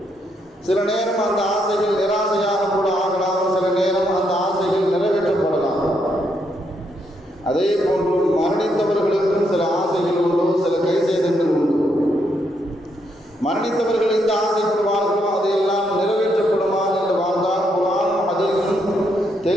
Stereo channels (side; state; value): both; normal; correlation 0.77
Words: சில நேரம் அந்த ஆசைகள் நிராசையாக கூட ஆகலாம், சில நேரம் அந்த ஆசைகள் நிறைவேற்றப்படலாம். அதே போன்று மரணித்தவர்களுக்கும் சில ஆசைகள் உண்டு, சில கைசேதங்கள் உண்டு. மரணித்தவர்கள் இந்த ஆசைப்படுவார்களோ அதையெல்லாம் நிறைவேற்றப்படுமா என்று வாழ்ந்தால் குர்ஆனும் ஹதீஸும்